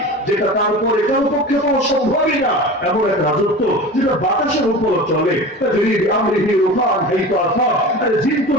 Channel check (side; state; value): both; normal; correlation 0.33